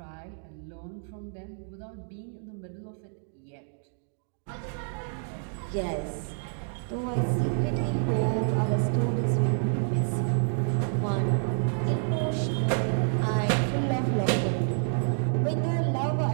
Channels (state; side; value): silent; left; digital silence